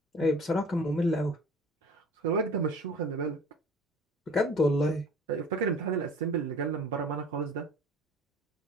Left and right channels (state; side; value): normal; both; correlation 0.45